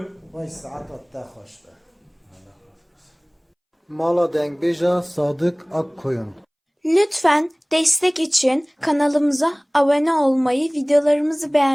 وای ساعت تا خوشته Mala Dengbêja Sadık Akkoyun. Lütfen destek için kanalımıza abone olmayı, videolarımızı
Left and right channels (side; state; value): both; identical; correlation 1.00